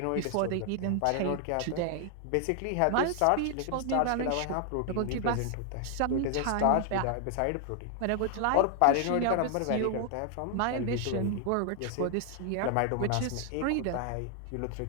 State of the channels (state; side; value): different; both; correlation 0.00